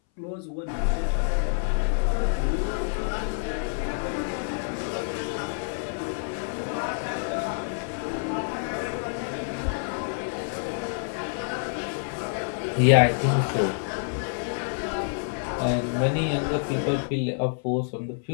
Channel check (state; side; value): silent; right; 60 dB below the other